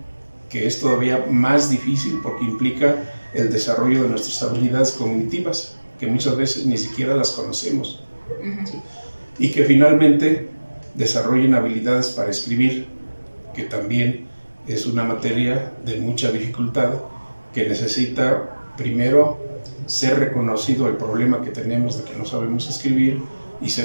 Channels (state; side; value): inverted; both; correlation -1.00